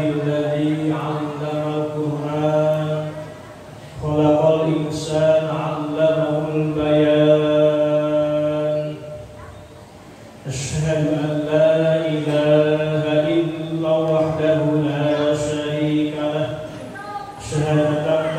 'allamal Qur'an khalaqal insana 'allamahul bayan. Asyhadu an la ilaha illallah wahdahu la syarika lah. Syahadatan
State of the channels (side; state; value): both; identical; correlation 1.00